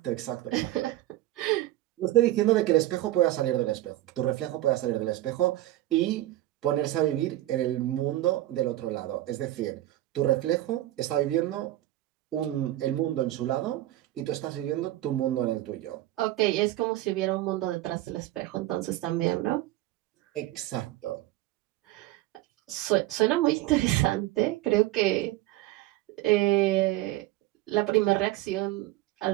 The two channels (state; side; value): quieter; left; 15.7 dB